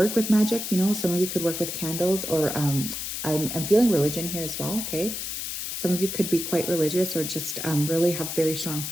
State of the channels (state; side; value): noise; left; hiss, 5 dB below the sound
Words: with magic, you know, some of you could work with candles, or I'm feeling religion here as well, okay? Some of you could be quite religious, or just really have very strong